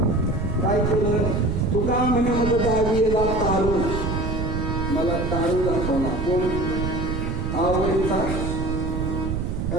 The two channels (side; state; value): right; noise; rumble, 2 dB below the sound